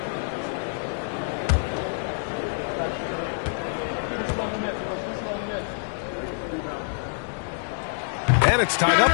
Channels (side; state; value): right; silent; digital silence